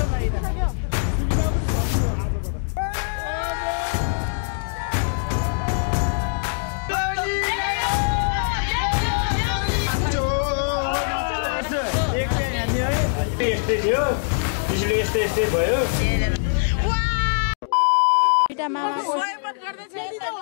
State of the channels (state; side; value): silent; right; digital silence